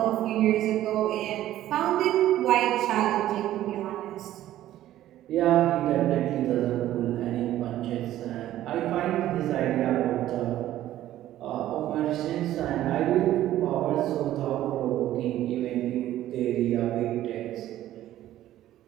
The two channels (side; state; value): left; quieter; 13.5 dB